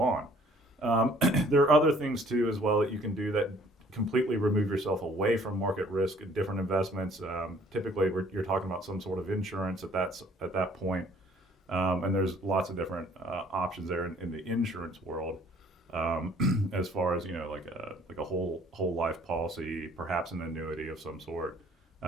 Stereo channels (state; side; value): normal; both; correlation 0.57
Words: on. There are other things too as well that you can do that completely remove yourself away from market risk in different investments. Typically, you're talking about some sort of insurance at that point. And there's lots of different options there in the insurance world, as far as like a whole life policy, perhaps an annuity of some sort.